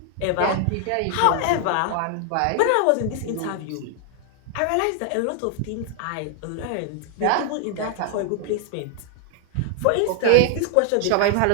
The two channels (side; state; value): both; different; correlation 0.00